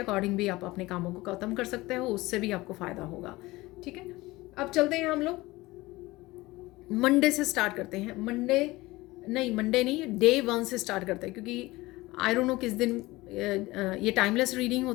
भी आप अपने कामों को ख़त्म कर सकते हो, उससे भी आपको फ़ायदा होगा। ठीक है, अब चलते हैं हम लोग मंडे से स्टार्ट करते हैं। मंडे नहीं, डे 1 से स्टार्ट करते हैं, क्योंकि आई डोंट नो किस दिन ये टाइमलेस रीडिंग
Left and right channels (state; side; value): quieter; right; 20.1 dB